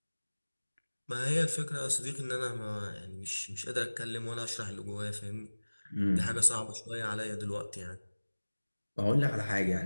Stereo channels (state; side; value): inverted; both; correlation -1.00